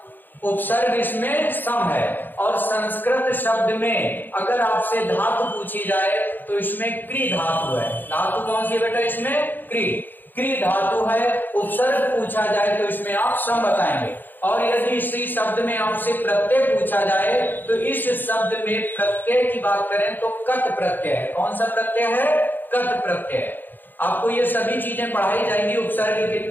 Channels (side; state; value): right; late; 0.090 ms